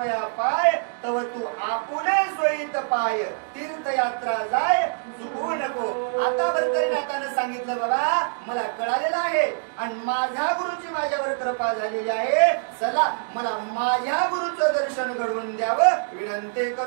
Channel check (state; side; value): silent; left; digital silence